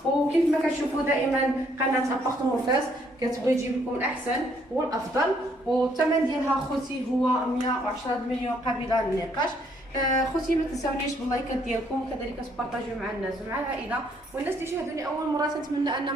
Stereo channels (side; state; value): both; normal; correlation 0.68